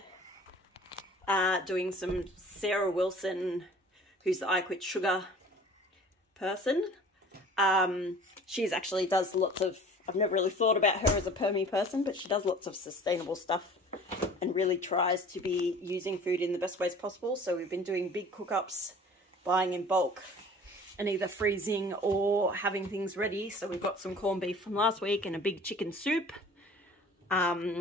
doing some Sarah Wilson, who's the I Quit Sugar person. She's actually does lots of, I've never really thought about her as a permy person, but she does lots of sustainable stuff and really tries to be using food in the best ways possible. So we've been doing big cook-ups, buying in bulk, and either freezing or having things ready. So we've got some corned beef from last week and a big chicken soup.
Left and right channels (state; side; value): normal; both; correlation 0.46